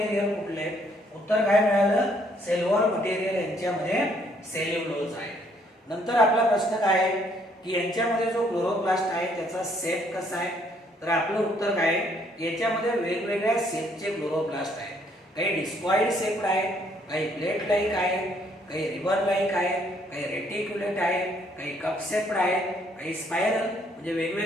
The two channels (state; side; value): normal; both; correlation 0.67